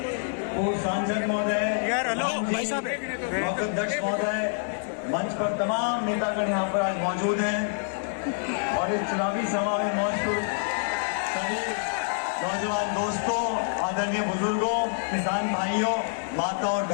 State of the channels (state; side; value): silent; right; digital silence